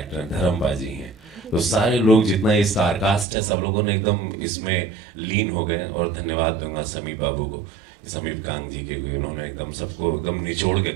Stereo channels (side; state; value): left; drops out; at 3.2 s